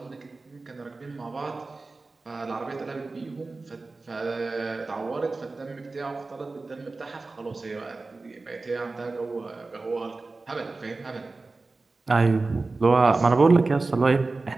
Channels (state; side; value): quieter; left; 3.6 dB